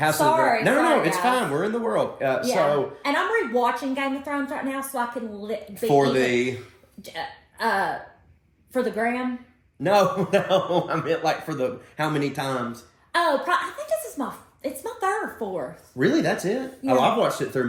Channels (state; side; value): identical; both; correlation 1.00